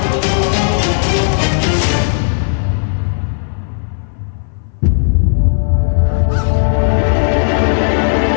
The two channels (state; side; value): silent; right; 60 dB below the other